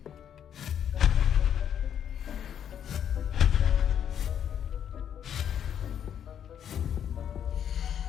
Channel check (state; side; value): quieter; right; 9.1 dB